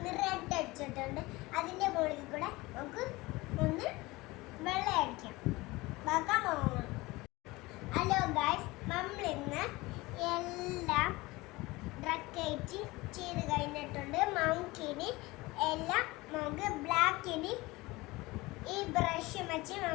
റെഡ് അടിച്ചിട്ടുണ്ട്. അതിൻ്റെ മുകളിൽ കൂടെ നമുക്ക് ഒന്ന് വെള്ളം അടിക്കാം. ബാക്കാൻ പോകണം. ഹലോ ഗൈസ്, നമ്മളിന്ന് എല്ലാം ഡ്രക്കേറ്റ് ചെയ്ത് കഴിഞ്ഞിട്ടുണ്ട്. നമുക്കിനി എല്ലാം നമുക്ക് ബ്ലാക്കിന് ഈ ബ്രഷ് വെച്ച്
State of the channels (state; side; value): quieter; right; 21.4 dB